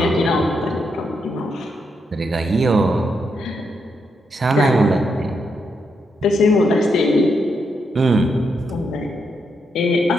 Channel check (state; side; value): normal; both; correlation 0.81